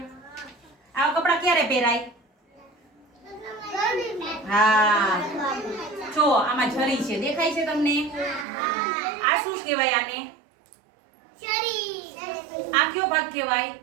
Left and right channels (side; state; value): left; drops out; at 8.5 s